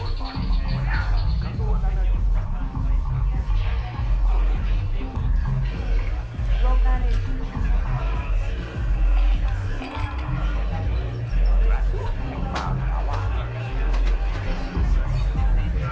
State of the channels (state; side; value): identical; both; correlation 1.00